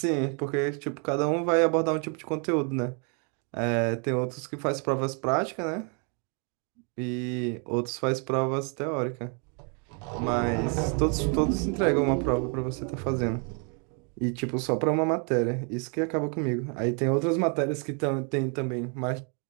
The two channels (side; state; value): left; quieter; 38.1 dB